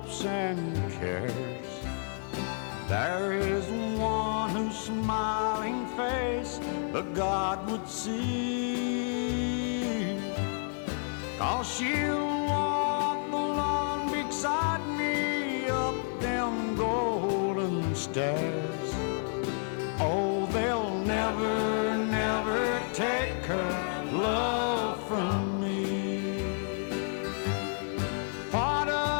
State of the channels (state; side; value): silent; right; 58 dB below the other